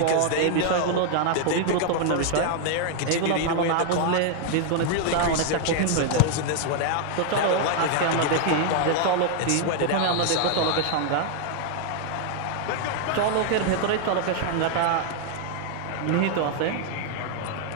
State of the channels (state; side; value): different; both; correlation 0.00